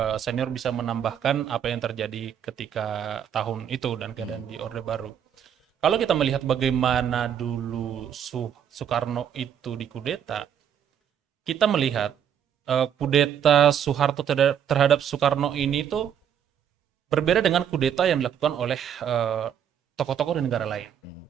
senior bisa menambahkan apa yang terjadi ketika tahun itu dan keadaan di Orde Baru. Kalau kita melihat bagaimana dulu Soekarno itu dikudeta, kita melihat kudeta Soeharto terhadap Soekarno ini tuh berbeda dengan kudeta yang dilakukan oleh tokoh-tokoh di negara lain.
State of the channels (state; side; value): quieter; left; 9.0 dB